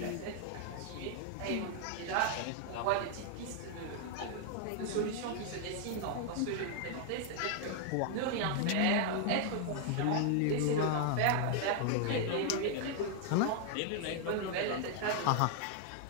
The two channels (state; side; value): different; both; correlation 0.00